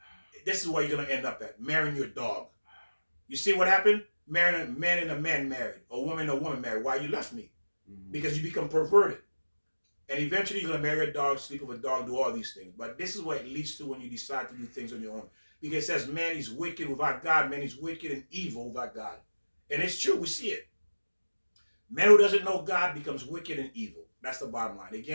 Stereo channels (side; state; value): both; inverted; correlation -1.00